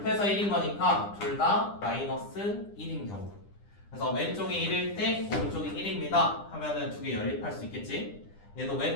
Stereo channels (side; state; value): right; late; 9.9 ms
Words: 1인 거니까 둘 다 마이너스 1인 경우. 그래서 왼쪽이 1일 때 오른쪽이 1입니다 하면은 두 개 연립할 수 있겠지. 얘도